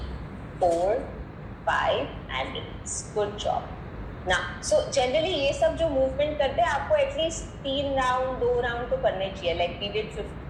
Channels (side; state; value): both; identical; correlation 1.00